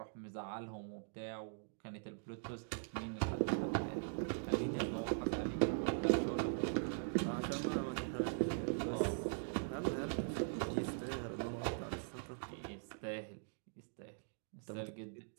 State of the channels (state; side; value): silent; left; digital silence